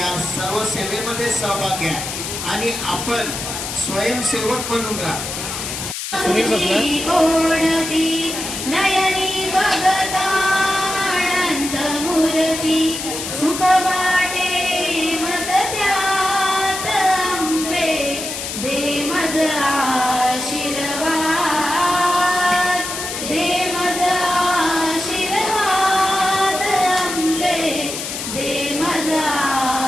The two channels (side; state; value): left; noise; hiss, 6 dB below the sound